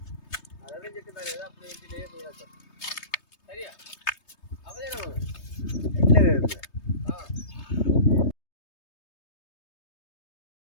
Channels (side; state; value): right; late; 3.2 ms